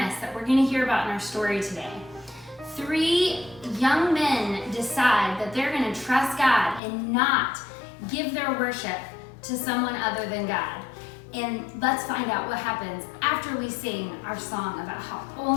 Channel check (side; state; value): right; drops out; at 6.8 s